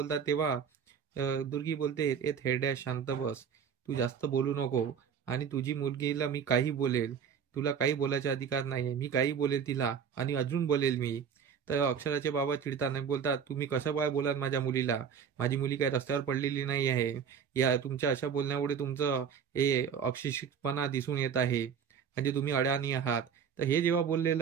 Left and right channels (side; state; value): left; quieter; 7.2 dB